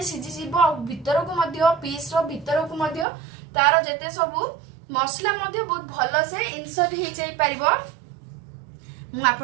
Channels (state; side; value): drops out; left; at 3.1 s